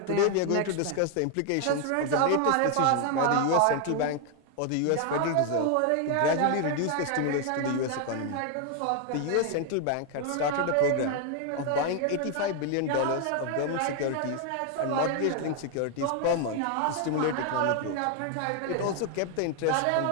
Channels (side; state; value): both; different; correlation 0.01